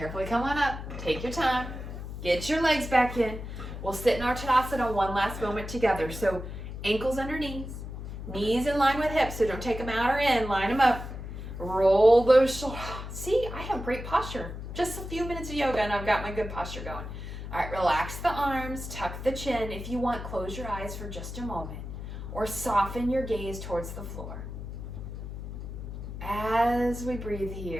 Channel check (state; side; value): noise; left; hum, 8 dB below the sound